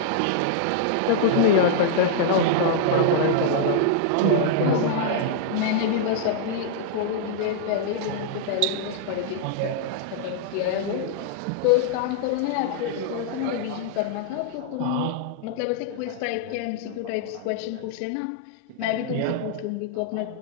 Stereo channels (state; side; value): different; both; correlation -0.01